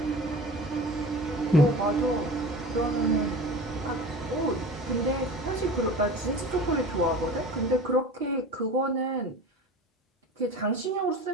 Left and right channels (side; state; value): both; normal; correlation 0.36